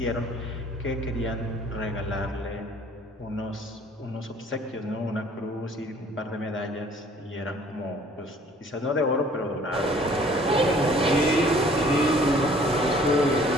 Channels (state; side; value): normal; both; correlation 0.55